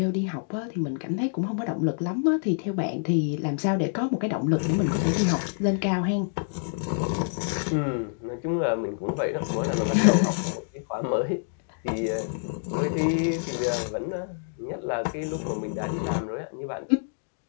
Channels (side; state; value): right; silent; digital silence